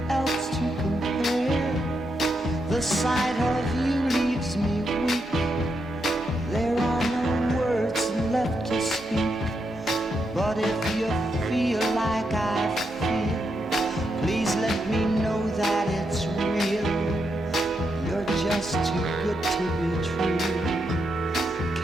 else to compare. The sight of you leaves me weak. There are no words left to speak. But if you feel like I feel, please let me know that it's real. You're just too good to be true.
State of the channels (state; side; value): normal; both; correlation 0.82